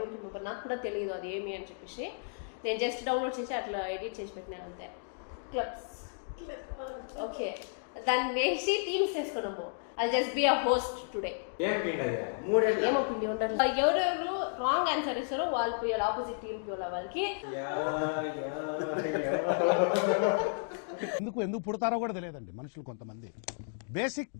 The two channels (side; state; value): right; silent; digital silence